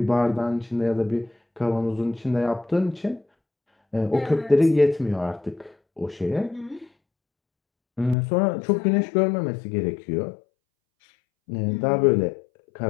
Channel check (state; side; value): drops out; right; at 8.2 s